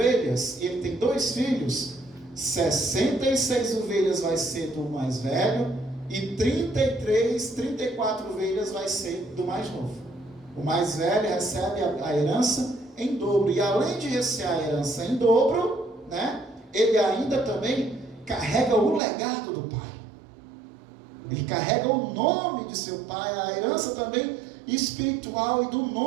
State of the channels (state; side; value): drops out; left; at 19.0 s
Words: e ele tem 2 filhos, 66 ovelhas vai ser do mais velho e 34 ovelhas vai ser do mais novo. O mais velho recebe a herança em dobro, e além de receber a herança em dobro, ele ainda também carrega o legado do pai. Ele carrega o nome de seu pai, a herança também espiritual e do